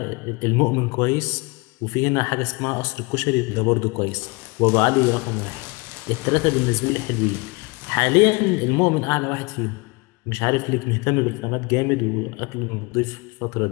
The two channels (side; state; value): right; quieter; 27.3 dB